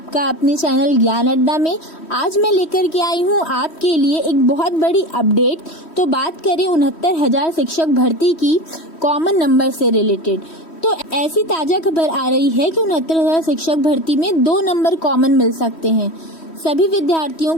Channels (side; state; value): right; late; 3.1 ms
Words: अपने चैनल ज्ञान अड्डा में। आज मैं लेकर के आई हूँ आपके लिए एक बहुत बड़ी अपडेट। तो बात करें 69,000 शिक्षक भर्ती की कॉमन नंबर से रिलेटेड। तो ऐसी ताज़ा खबर आ रही है कि 69,000 शिक्षक भर्ती में 2 नंबर कॉमन मिल सकते हैं। सभी विद्यार्थियों